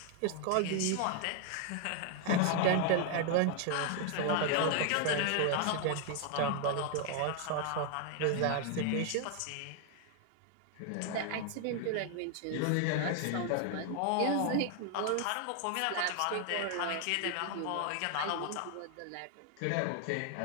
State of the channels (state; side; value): different; both; correlation 0.00